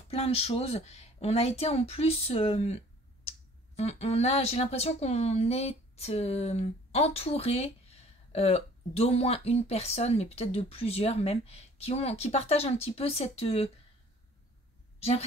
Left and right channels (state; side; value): normal; both; correlation 0.53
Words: plein de choses. On a été en plus... j'ai l'impression qu'on est entouré d'au moins une personne, mais peut-être de plusieurs même, qui partagent un petit peu cette... j'ai